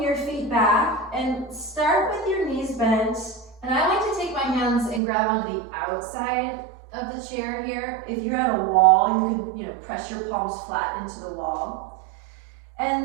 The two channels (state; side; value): drops out; left; at 5.0 s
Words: your feet back and start with your knees bent. And I like to take my hands and grab onto the outside of the chair here. If you're at a wall, you can press your palms flat into the wall.